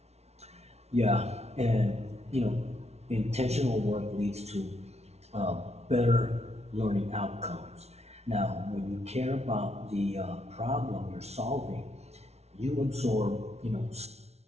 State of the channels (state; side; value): late; left; 0.31 ms